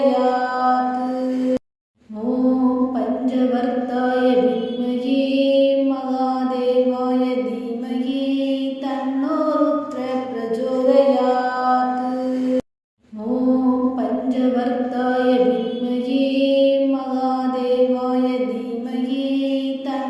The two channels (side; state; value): both; identical; correlation 1.00